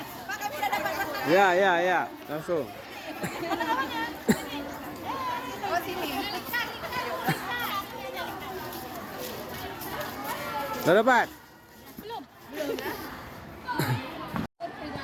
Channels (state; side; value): identical; both; correlation 1.00